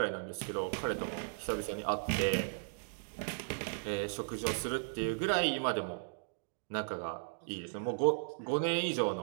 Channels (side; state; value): left; silent; digital silence